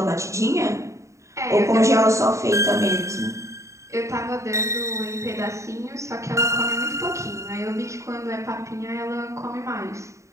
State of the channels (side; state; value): left; late; 0.14 ms